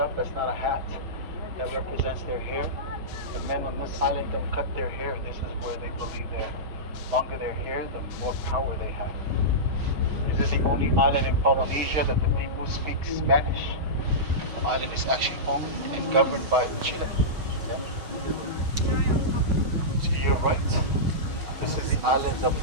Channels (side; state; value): left; late; 6.4 ms